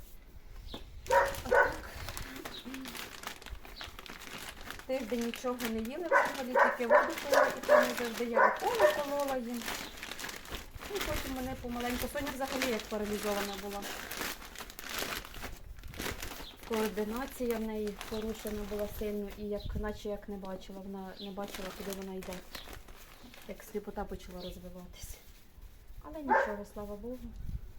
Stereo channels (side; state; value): both; identical; correlation 1.00